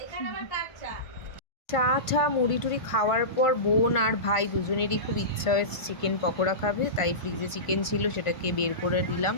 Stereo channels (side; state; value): right; late; 1.5 ms